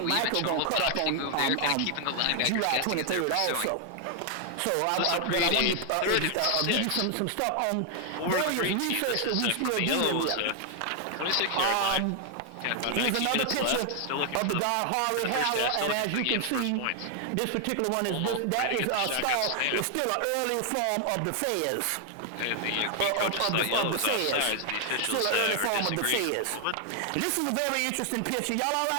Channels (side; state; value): both; different; correlation 0.00